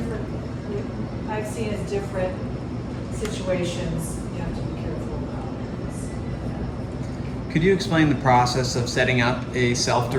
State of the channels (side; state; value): both; identical; correlation 1.00